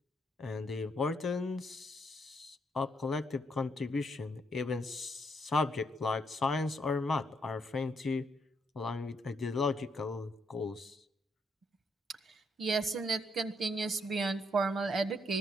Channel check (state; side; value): normal; both; correlation 0.74